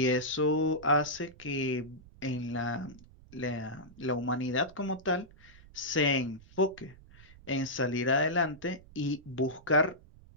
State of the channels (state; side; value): noise; right; rumble, 22 dB below the sound